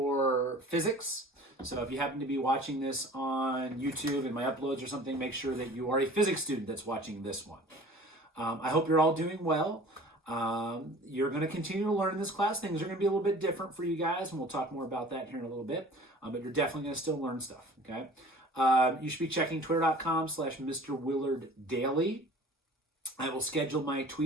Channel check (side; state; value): both; normal; correlation 0.45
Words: physics. So if you happen to be watching this on YouTube and my uploads or something, make sure that you are a physics student that's watching this one. I hope you're all doing well. You're going to continue to learn in this class. Things are going to be a little bit different for you guys, and we'll talk more about that here in a little bit. But you're definitely going to still learn stuff, okay? You should be checking twitter.com/Mr. Willard Daily. I will schedule my